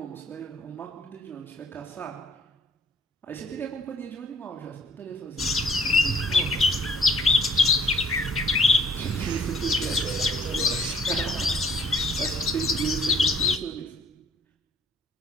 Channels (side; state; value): both; normal; correlation 0.59